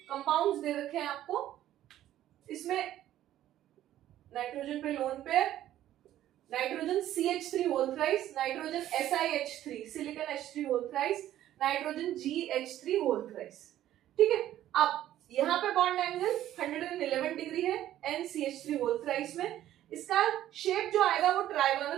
कंपाउंड्स दे रखे हैं आपको। इसमें नाइट्रोजन पे lone pair, nitrogen CH3 whole thrice, nitrogen SiH3 silicon H3 whole thrice, nitrogen GH3 whole thrice. ठीक है, अब यहाँ पे बॉन्ड एंगल 111 डिग्री है NCH3 होल थ्राइस में। इसका शेप जो आएगा वो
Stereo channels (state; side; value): quieter; left; 12.8 dB